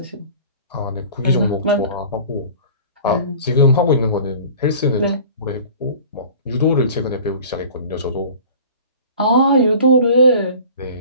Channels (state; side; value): inverted; both; correlation -0.44